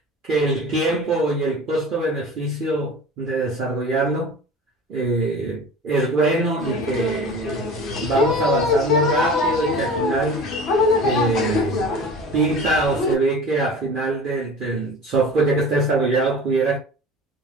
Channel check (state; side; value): normal; both; correlation 0.38